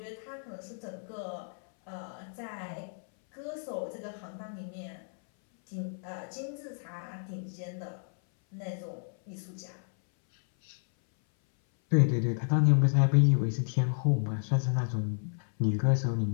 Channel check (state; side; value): silent; right; 57 dB below the other